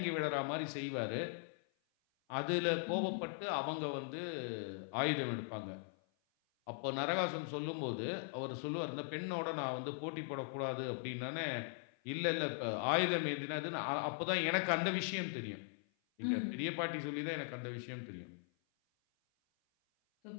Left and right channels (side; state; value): right; silent; 51 dB below the other